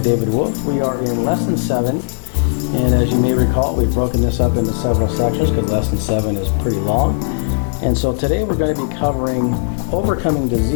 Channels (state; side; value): quieter; right; 38.3 dB